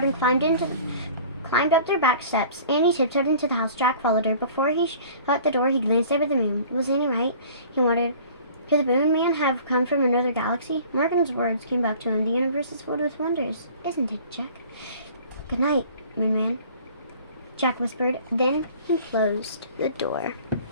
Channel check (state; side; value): inverted; both; correlation -0.48